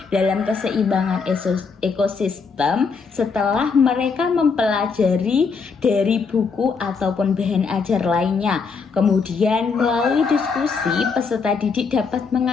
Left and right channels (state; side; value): quieter; right; 5.1 dB